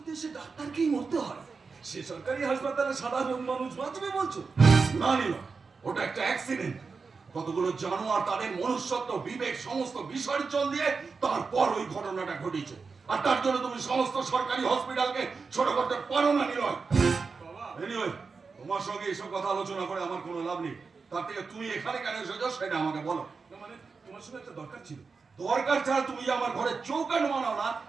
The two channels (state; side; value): quieter; left; 4.8 dB